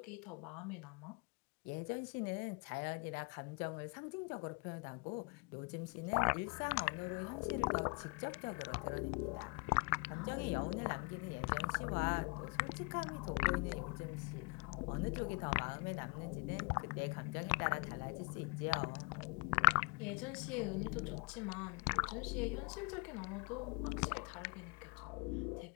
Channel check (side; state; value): right; quieter; 31.9 dB